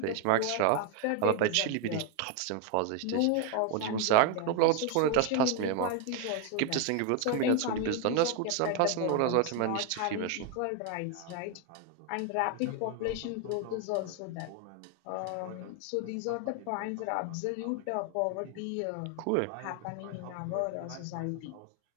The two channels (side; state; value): both; different; correlation 0.01